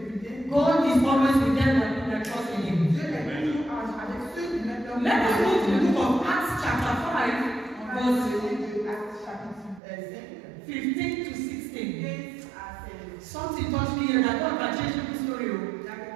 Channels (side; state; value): left; drops out; at 9.8 s